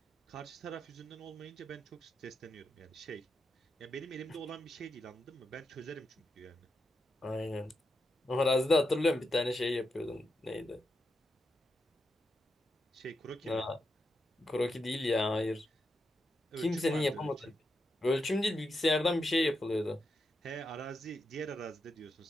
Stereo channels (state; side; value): normal; both; correlation 0.85